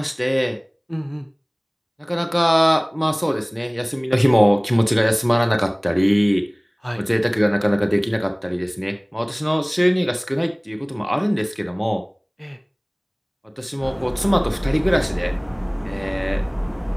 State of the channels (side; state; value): both; identical; correlation 1.00